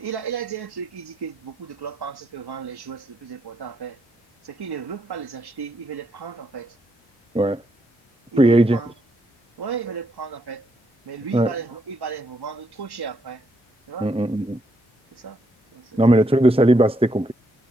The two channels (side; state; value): both; normal; correlation 0.76